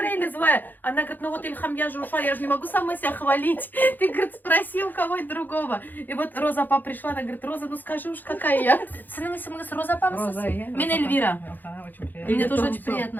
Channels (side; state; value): right; late; 0.087 ms